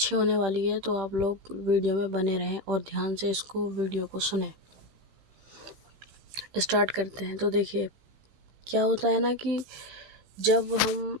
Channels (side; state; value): left; late; 15 ms